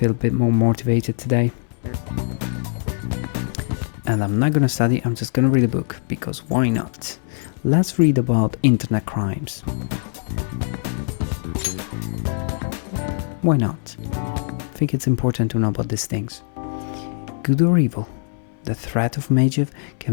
a bit more motivated today. And I'm not gonna study, I'm just gonna read a book, because why not? Let's read about internet crimes. Why not? I think it's important to know about these things. Good or evil, the threat of Magev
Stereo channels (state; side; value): silent; right; 63 dB below the other